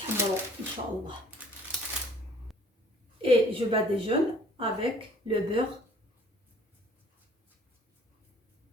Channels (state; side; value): normal; both; correlation 0.55